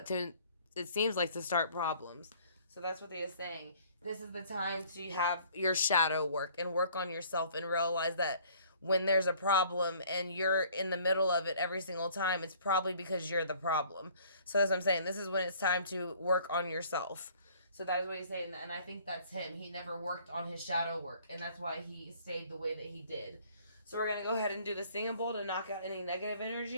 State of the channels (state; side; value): inverted; both; correlation -0.55